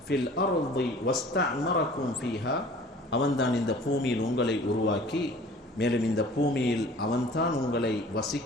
ஃபில் அர்தி வஸ்தஅமரக்கும் ஃபீஹா, அவன்தான் இந்த பூமியில் உங்களை உருவாக்கி மேலும் இந்த பூமியில் அவன்தான் உங்களை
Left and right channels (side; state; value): both; normal; correlation 0.47